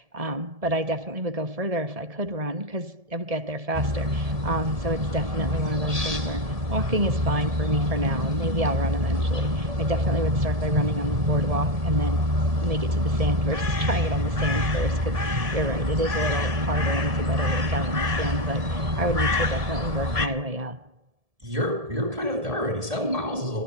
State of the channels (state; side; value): late; left; 1.7 ms